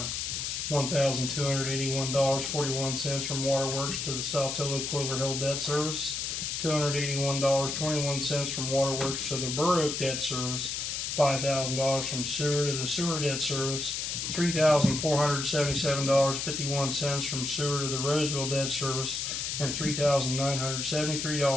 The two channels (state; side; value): noise; left; hiss, 3 dB below the sound